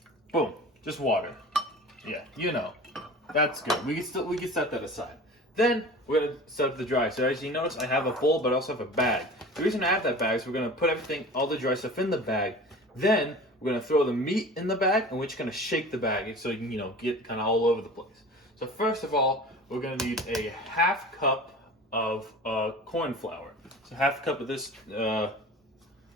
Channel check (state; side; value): normal; both; correlation 0.39